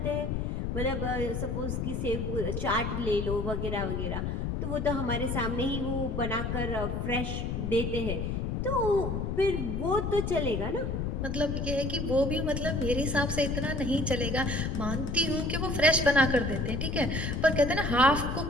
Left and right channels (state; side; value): noise; left; rumble, 2 dB below the sound